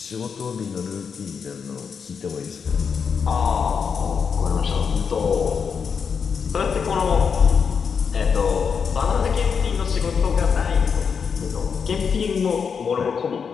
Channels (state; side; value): quieter; right; 6.3 dB